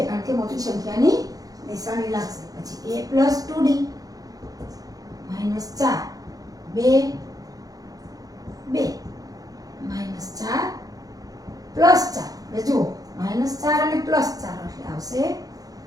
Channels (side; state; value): left; late; 0.18 ms